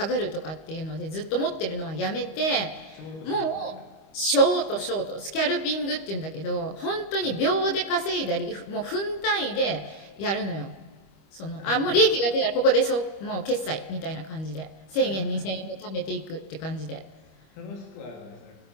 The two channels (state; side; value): late; right; 25 ms